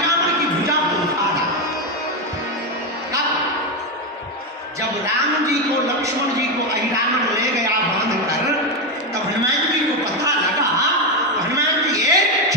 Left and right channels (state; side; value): normal; both; correlation 0.09